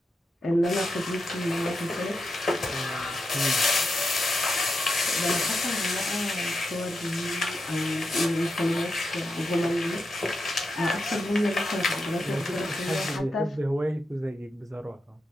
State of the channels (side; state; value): both; normal; correlation 0.87